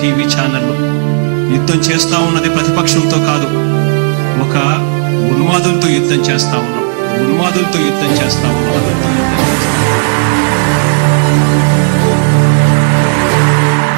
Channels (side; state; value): left; silent; digital silence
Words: టీవీ ఛానళ్ళు. యుద్ధం చేస్తా ఉన్నది ప్రతిపక్షంతో కాదు, ఒక ఉన్మాదులతో యుద్ధం చేస్తా ఉన్నాం. ఉన్మాదులతో యుద్ధం చేస్తా ఉన్నాం.